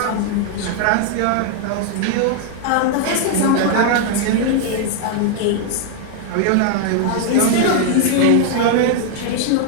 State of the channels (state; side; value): different; both; correlation 0.00